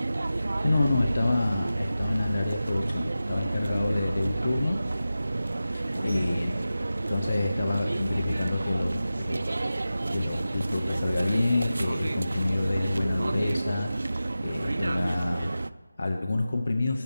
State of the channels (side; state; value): both; inverted; correlation -0.94